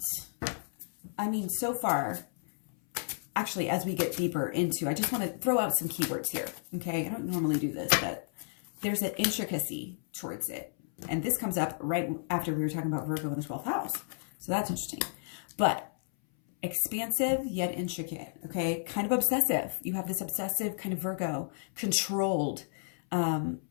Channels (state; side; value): silent; right; 56 dB below the other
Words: so far, actually, as we get deeper into, I just want to throw out some keywords here. Okay. I don't normally do this, but there's an intricacy towards it. And this comes up right after we were talking about Virgo in the 12th house. So that's interesting. But expansive yet intricate. Okay. Kind of obsessive. You have this obsessive kind of Virgo, controlled,